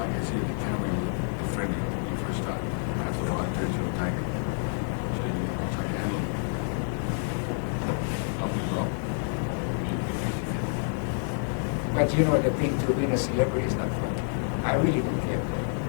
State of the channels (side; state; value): right; silent; digital silence